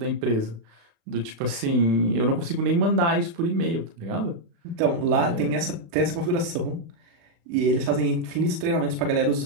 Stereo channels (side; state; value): left; late; 35 ms